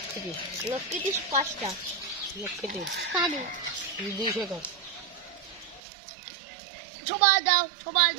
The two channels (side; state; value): left; drops out; at 5.8 s